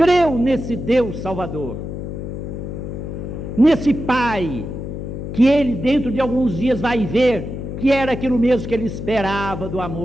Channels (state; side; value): noise; left; hum, 7 dB below the sound